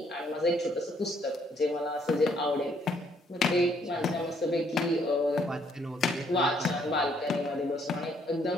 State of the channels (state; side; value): normal; both; correlation 0.68